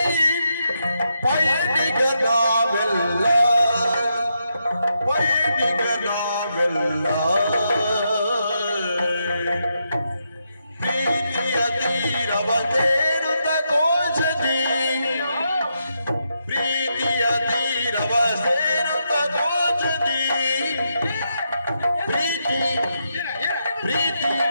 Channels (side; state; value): both; inverted; correlation -0.82